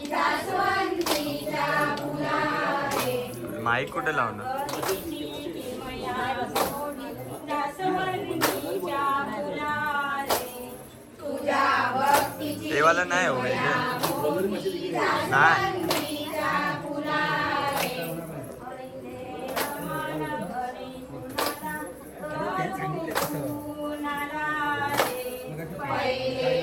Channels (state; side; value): identical; both; correlation 1.00